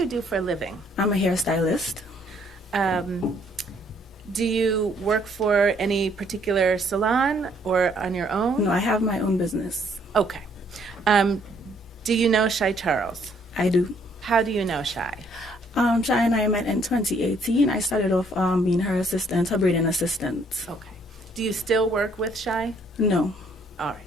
do for a living? I'm a hairstylist. Do you work for any particular salon or on your own? No, I have my own business. Okay. Do you know Shy Charles? I do. How do you know Shy? Shy and I met in 2018. I started off being her assistant, her braiding assistant. Okay. Do you still work with Shy? No. All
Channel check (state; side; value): normal; both; correlation 0.65